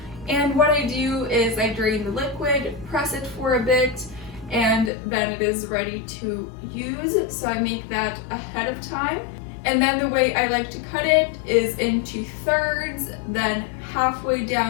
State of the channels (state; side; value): drops out; right; at 4.9 s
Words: And what I do is I drain the liquid, press it for a bit, and then it is ready to use. So I make that ahead of time. And then the way I like to cut it is into thirds, then halfway